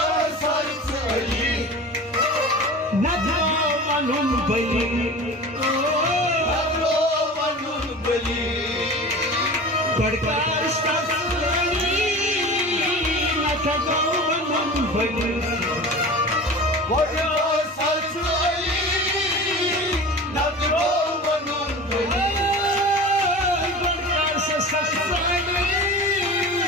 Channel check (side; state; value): both; normal; correlation 0.35